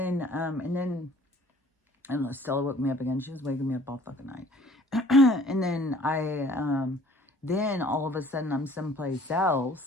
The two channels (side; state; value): both; normal; correlation 0.53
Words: and Stella woke me up again. She was waking me up all fucking night. And then then all of a sudden I'm someplace